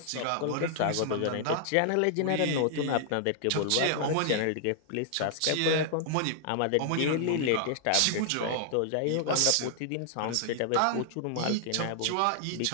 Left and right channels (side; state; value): both; different; correlation 0.00